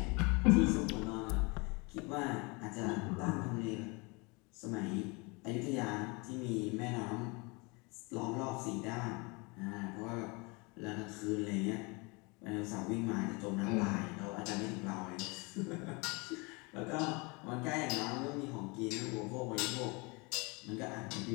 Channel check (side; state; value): right; quieter; 28.3 dB